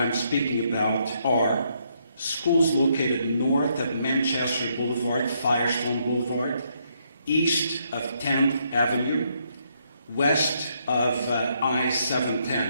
speaking about are schools located north of Manchester Boulevard, Firestone Boulevard, east of 10th Avenue, west of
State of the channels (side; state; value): both; inverted; correlation -0.74